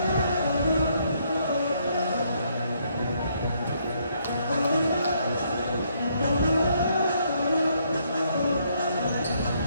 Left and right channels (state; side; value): inverted; both; correlation -0.71